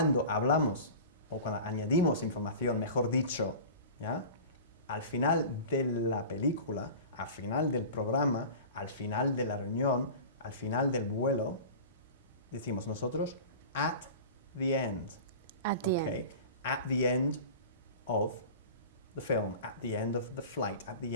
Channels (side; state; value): both; inverted; correlation -0.36